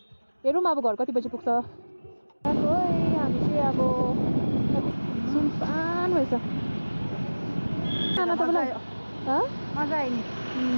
हेरौँ अब घर कति बजी पुग्छ हामी चाहिँ अब सुनसान भएछ नाना तपाईँलाई मजा आयो नि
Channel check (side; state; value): both; inverted; correlation -1.00